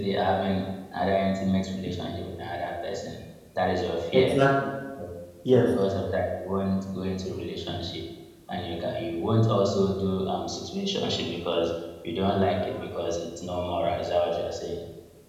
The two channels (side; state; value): both; identical; correlation 1.00